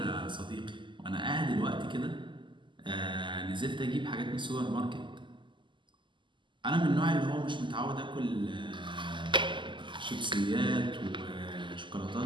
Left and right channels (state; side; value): late; left; 0.24 ms